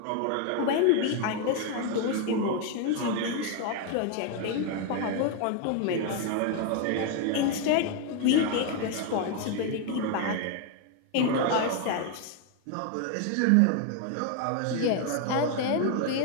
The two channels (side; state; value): both; different; correlation 0.01